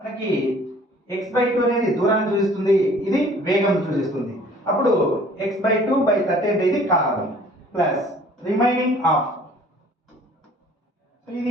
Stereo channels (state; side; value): normal; both; correlation 0.53